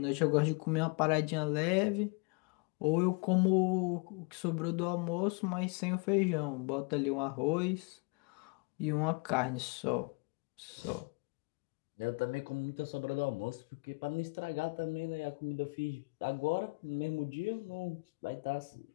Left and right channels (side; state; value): right; quieter; 30.8 dB